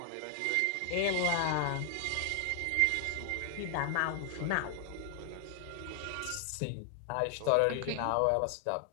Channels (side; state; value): both; different; correlation 0.00